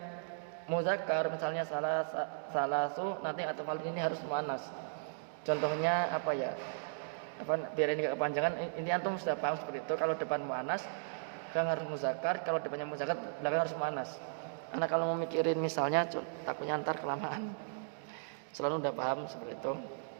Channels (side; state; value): left; silent; digital silence